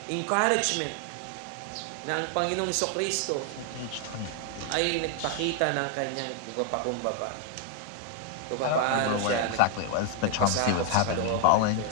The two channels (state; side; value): different; both; correlation 0.00